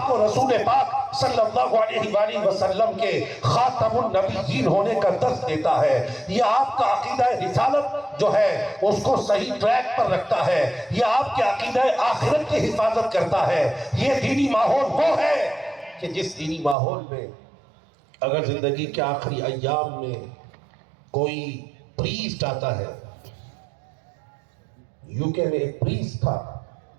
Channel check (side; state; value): left; drops out; at 16.8 s